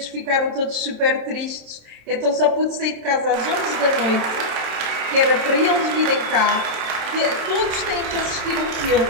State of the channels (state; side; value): late; left; 27 ms